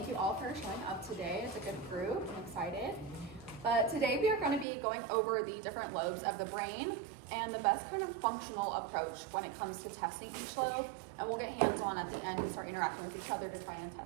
you all for showing up today. It's a good group. I'm excited. But today we are going to be going over the different lobes of the brain and the best kind of functional approach when it comes to testing each lobe. And we'll get hands-on at the end and start interacting with each other to try and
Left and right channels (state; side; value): drops out; left; at 4.7 s